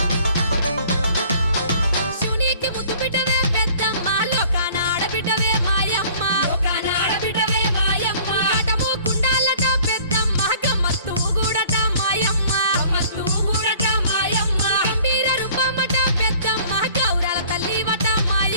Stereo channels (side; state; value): both; inverted; correlation -0.52